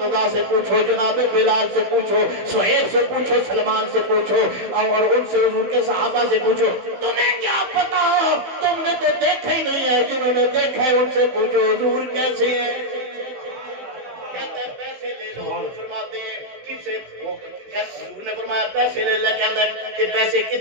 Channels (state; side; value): late; left; 15 ms